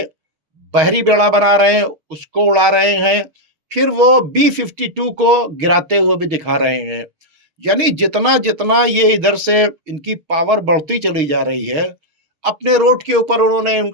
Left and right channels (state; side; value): late; left; 6.4 ms